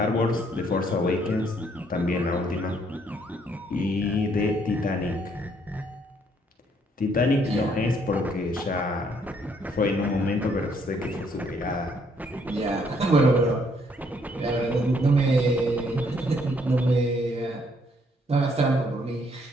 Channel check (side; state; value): both; normal; correlation 0.68